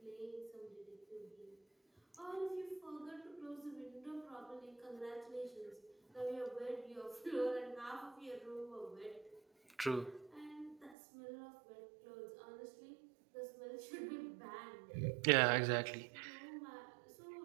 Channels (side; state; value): left; drops out; at 11.0 s